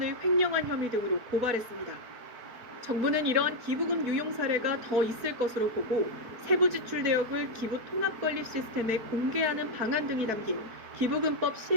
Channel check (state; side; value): late; left; 4.6 ms